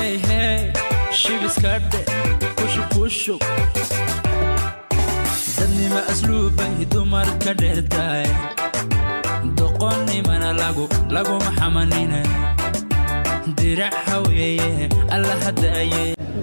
hey shibiskadhe kushub dadnima asluuban dumar ka dheertaay doqonnimana laguma xamanina dirac haweeye alla hadaaye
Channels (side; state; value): both; inverted; correlation -1.00